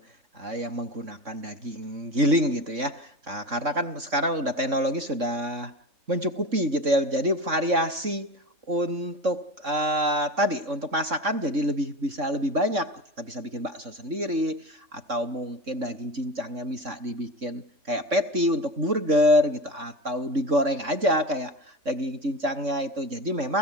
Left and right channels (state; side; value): late; left; 3.6 ms